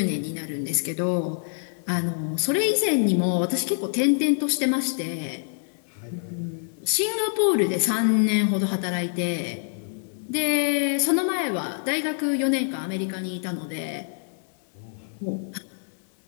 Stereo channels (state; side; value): silent; right; digital silence